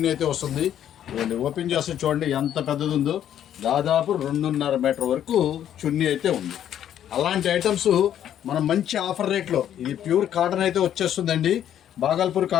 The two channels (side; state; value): right; quieter; 10.4 dB